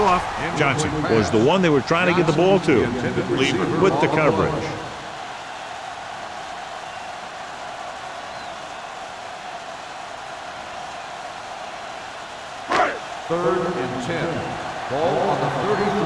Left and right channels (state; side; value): identical; both; correlation 1.00